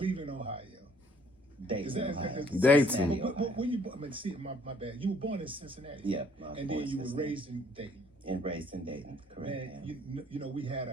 Ohio. Dayton, Ohio. Dayton. When you, I mean, see, my bad. You were born in Cincinnati. Yeah. And then you were raised in Dayton. And raised in Dayton, correct. Man, you know, we had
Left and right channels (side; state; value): both; normal; correlation 0.61